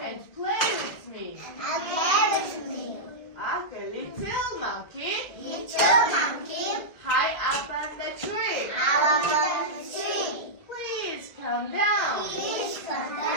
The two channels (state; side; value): late; right; 1.6 ms